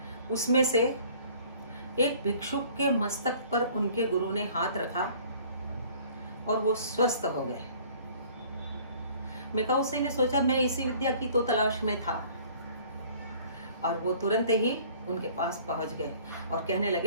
उसमें से एक भिक्षुक के मस्तक पर उनके गुरु ने हाथ रखा और वो स्वस्थ हो गए। मिकाओ उसेई ने सोचा, मैं इसी विद्या की तो तलाश में था, और वो तुरंत ही उनके पास पहुंच गए और कहने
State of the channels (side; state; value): both; inverted; correlation -0.53